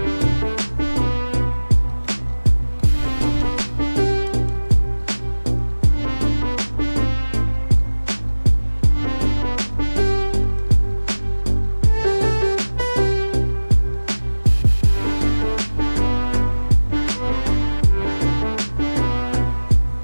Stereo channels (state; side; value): inverted; both; correlation -1.00